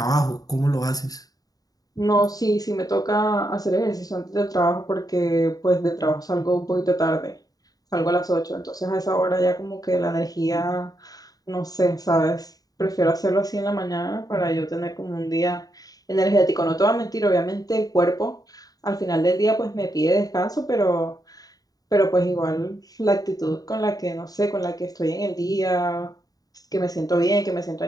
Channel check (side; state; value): right; late; 0.18 ms